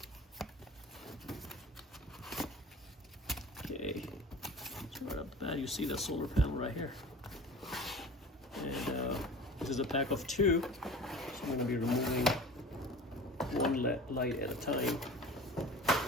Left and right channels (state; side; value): normal; both; correlation 0.39